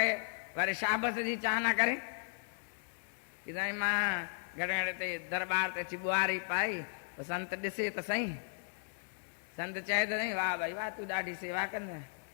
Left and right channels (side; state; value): right; silent; digital silence